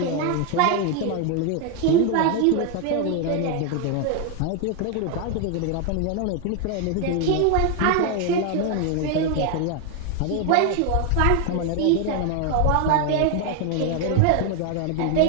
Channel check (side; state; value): both; different; correlation 0.01